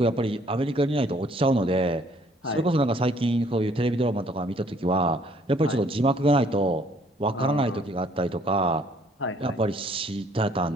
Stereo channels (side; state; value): both; normal; correlation 0.62